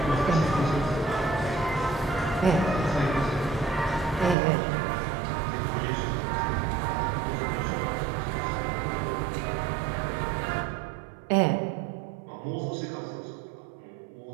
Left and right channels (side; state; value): left; drops out; at 4.4 s